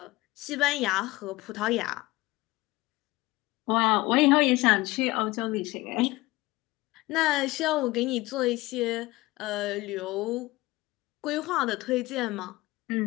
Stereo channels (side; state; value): right; quieter; 20.0 dB